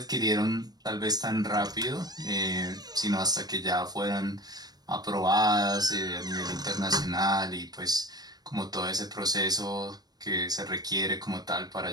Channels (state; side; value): late; left; 0.19 ms